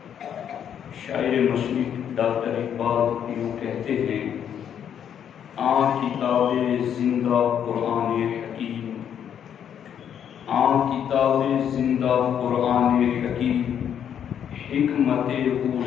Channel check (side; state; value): right; quieter; 8.9 dB